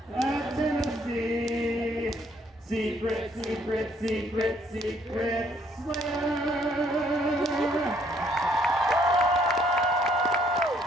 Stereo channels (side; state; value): both; normal; correlation 0.66